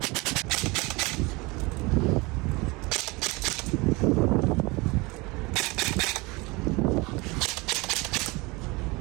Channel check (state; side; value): quieter; left; 24.9 dB